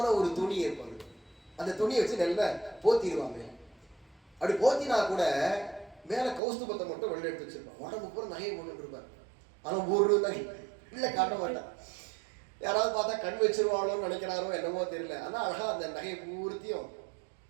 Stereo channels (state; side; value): drops out; left; at 6.4 s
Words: ஒரு துணி இருப்பாங்க, அந்த துணியை வச்சு நல்லா போத்திடுவாங்க. அப்படி போத்தினா கூட மேல கௌஸ்துபத்தை மட்டும் வெளில எடுத்து வச்சிருப்பான். உடம்பு பூரா நகையை போட்டு இருப்பார். ஆனால் ஒரு நகை இல்லை காட்ட மாட்டான். யாராவது பார்த்தா கண் வச்சிருவாளோன்னு நினைக்கிறாரோ என்னமோ தெரியல. ஆனால் அழகா அந்த நகையை பூர்த்தியும்